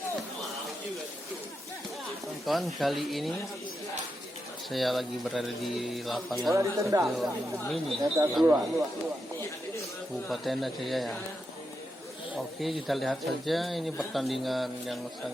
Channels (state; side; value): normal; both; correlation 0.86